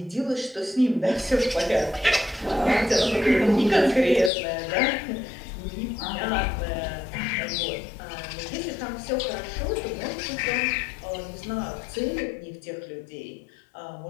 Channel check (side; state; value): right; drops out; at 4.3 s